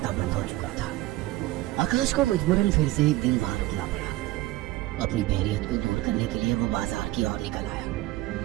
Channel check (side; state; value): left; quieter; 17.3 dB